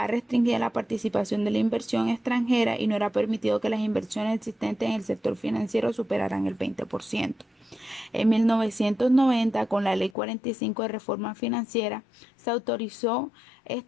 restringida la participación de la inversión extranjera y no era permitido que las inversiones existentes en el sector financiero superaran el 20%. En 1990, con la Ley 45 de Reforma Financiera, se autorizó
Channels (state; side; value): drops out; right; at 10.1 s